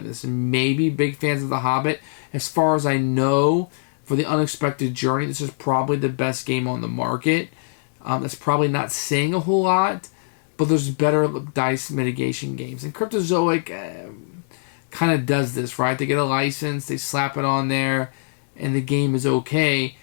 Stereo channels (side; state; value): right; silent; 64 dB below the other